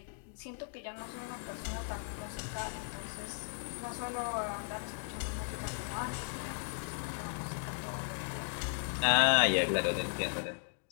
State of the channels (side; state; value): right; silent; 54 dB below the other